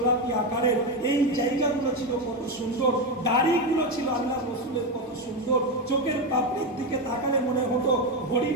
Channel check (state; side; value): normal; both; correlation 0.12